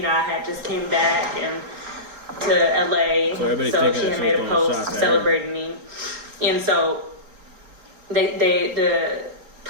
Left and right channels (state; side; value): late; left; 4.3 ms